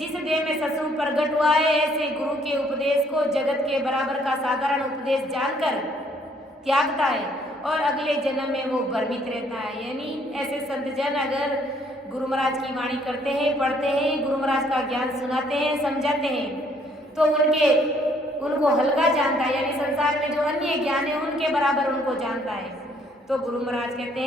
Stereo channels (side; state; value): both; normal; correlation 0.65